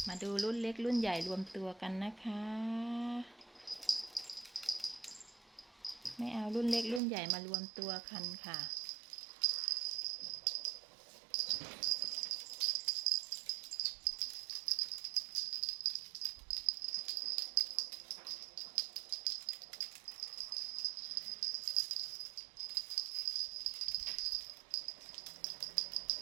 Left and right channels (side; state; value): left; drops out; at 7.0 s